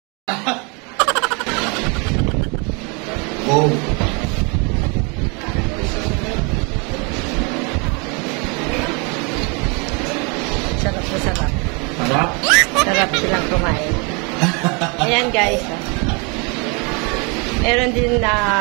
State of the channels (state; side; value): quieter; left; 32.1 dB